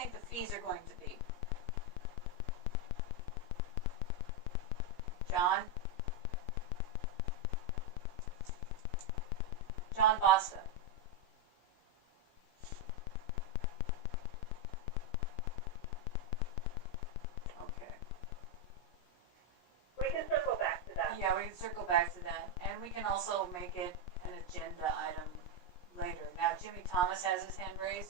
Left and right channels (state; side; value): late; right; 17 ms